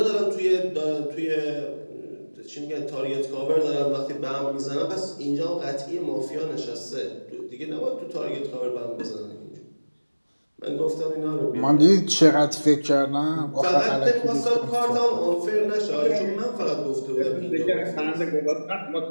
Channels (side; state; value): both; inverted; correlation -1.00